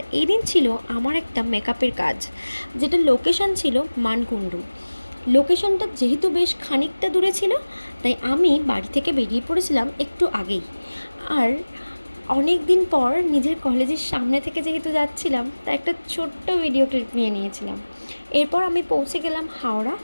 এই দিন ছিল আমার একটা মেকআপের কাজ, যেটা লোকেশন ছিল মানকুণ্ডু। লোকেশনটা যেহেতু বেশ খানিকটা দূরে ছিল, তাই আমি বাড়ি থেকে বেরিয়ে পড়েছিলাম একটু আগেই। আর অনেক দিন পর নিজের কলেজের সামনে থেকে যেহেতু যাচ্ছিলাম, তাই একটা ছোট্ট ভিডিও ক্লিপ নিয়ে নিয়েছিলাম। এরপর আমি পৌঁছে গেলাম হাওড়া।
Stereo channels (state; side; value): inverted; both; correlation -1.00